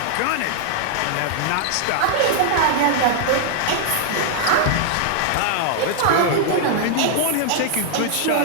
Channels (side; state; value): both; different; correlation -0.01